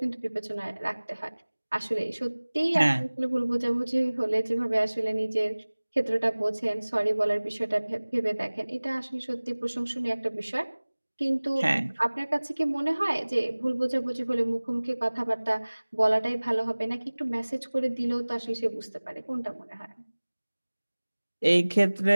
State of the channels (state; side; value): inverted; both; correlation -1.00